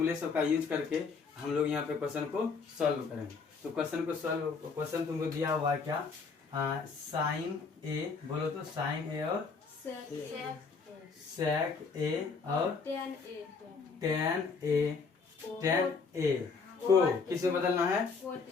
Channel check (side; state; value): right; quieter; 4.9 dB